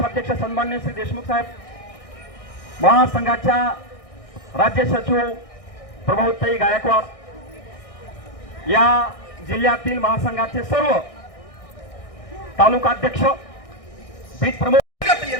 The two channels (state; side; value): late; right; 1.6 ms